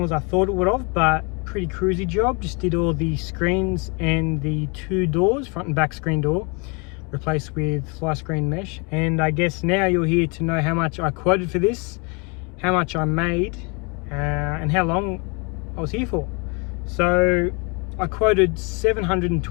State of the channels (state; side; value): quieter; right; 31.8 dB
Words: as I thought it would have, but pretty cruisy job. Just did all the screens and the two doors, front and back screen door, replaced with Flyscreen mesh. And I guess now you're here to know how much I quoted for this, how much I made, and how long I was here for. So I quoted